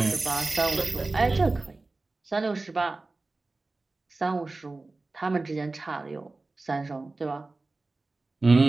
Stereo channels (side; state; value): left; quieter; 3.3 dB